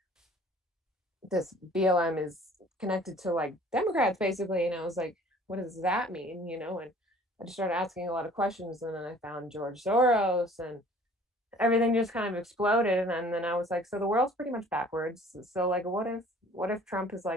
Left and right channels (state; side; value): normal; both; correlation 0.52